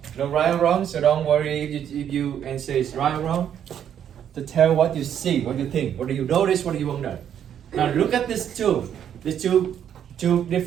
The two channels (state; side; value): quieter; left; 9.4 dB